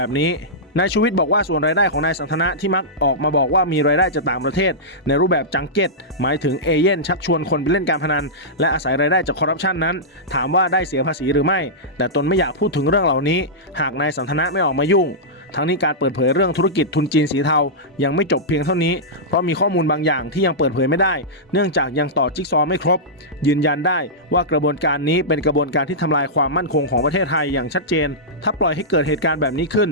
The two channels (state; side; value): normal; both; correlation -0.13